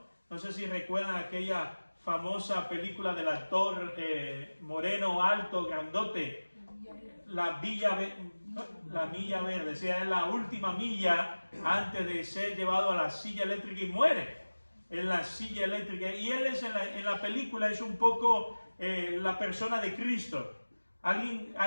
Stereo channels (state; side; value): inverted; both; correlation -1.00